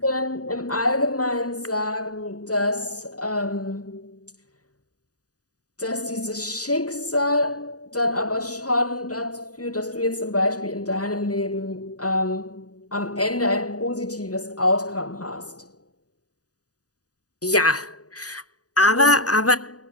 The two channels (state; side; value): late; right; 0.67 ms